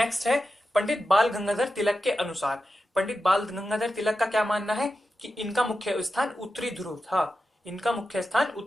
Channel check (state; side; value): normal; both; correlation 0.91